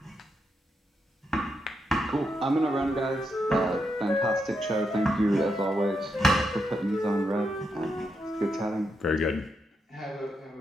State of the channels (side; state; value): both; normal; correlation 0.82